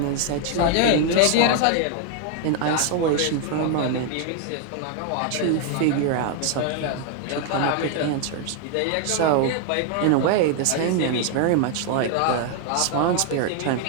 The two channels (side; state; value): both; different; correlation 0.00